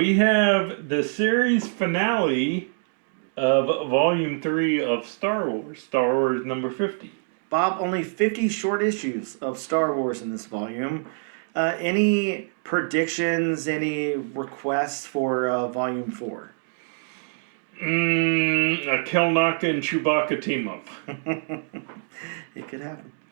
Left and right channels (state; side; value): silent; left; digital silence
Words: have the series finale of Volume 3 of Star Wars number 50. Bob, only 50 short issues of Star Wars in this volume. Any predictions, any requests for Volume 4? A Kelnaka and Chewbacca team up. It could happen.